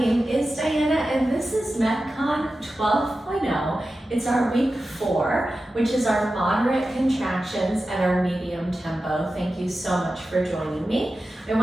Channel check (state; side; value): normal; both; correlation 0.93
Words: is Diana and this is MetCon 12.0. It's our week 4, which is our moderate contractions and our medium tempo. Thank you so much for joining me. I